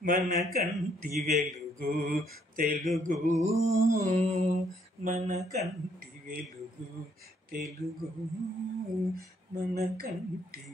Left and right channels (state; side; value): normal; both; correlation 0.68